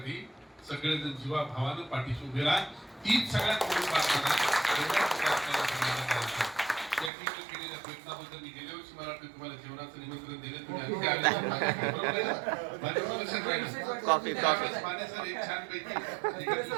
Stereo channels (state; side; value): drops out; left; at 7.1 s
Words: सगळेजण जीवाभावानं पाठीशी उभे राहा. तीच सगळ्यात मोठी प्रार्थना. केलेल्या प्रयत्नाबद्दल मी गेल्या वर्षी मला वाटतं तुम्हाला जेवणाचं निमंत्रण दिलं, तुम्ही